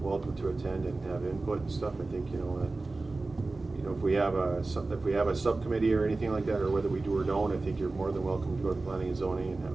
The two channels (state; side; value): quieter; left; 3.4 dB